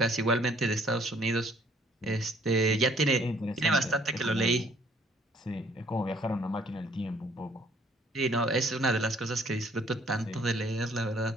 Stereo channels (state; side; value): normal; both; correlation 0.61